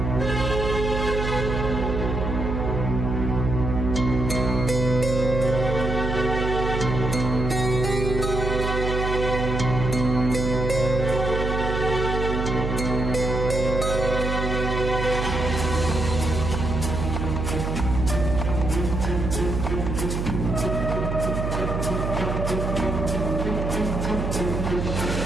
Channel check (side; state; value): right; noise; hum, 2 dB below the sound